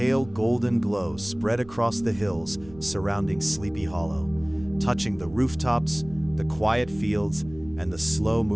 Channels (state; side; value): noise; right; rumble, 19 dB below the sound